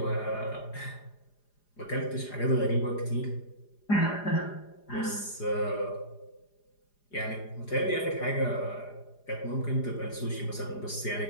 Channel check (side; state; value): right; late; 4.9 ms